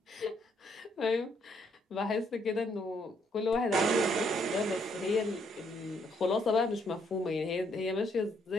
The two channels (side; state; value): both; normal; correlation 0.71